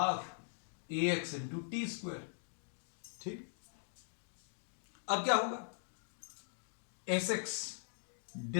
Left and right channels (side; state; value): right; silent; digital silence